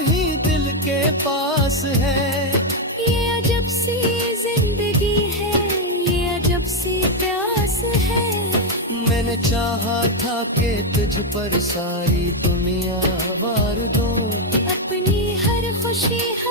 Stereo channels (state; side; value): normal; both; correlation 0.04